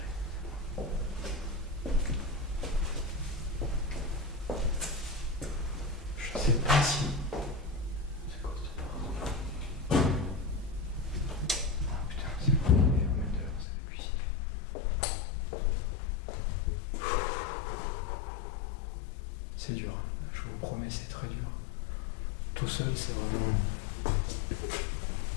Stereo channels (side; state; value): right; drops out; at 13.7 s